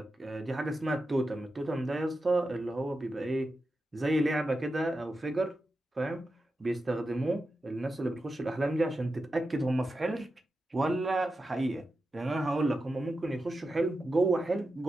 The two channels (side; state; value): both; normal; correlation 0.90